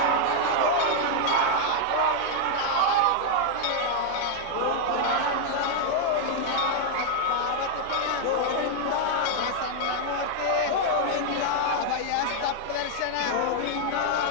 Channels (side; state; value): both; different; correlation 0.00